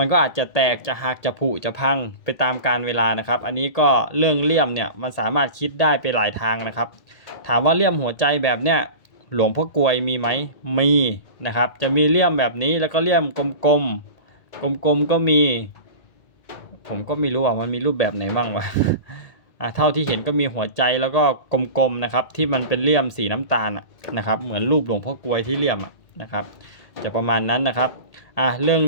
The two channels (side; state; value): right; late; 1.8 ms